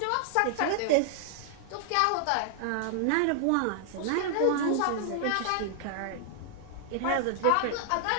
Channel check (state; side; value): different; both; correlation 0.00